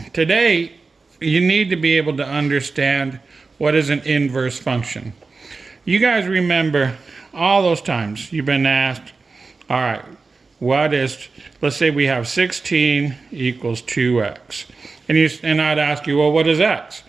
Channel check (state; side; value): quieter; left; 4.1 dB